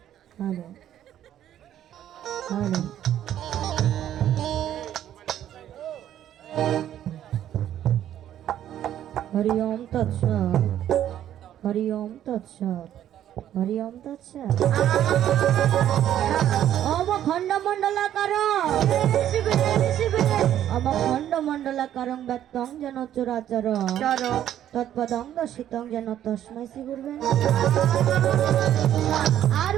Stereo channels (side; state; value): left; quieter; 11.2 dB